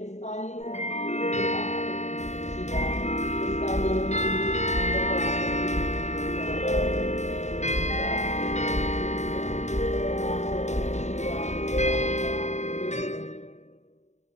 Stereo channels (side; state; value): right; late; 0.33 ms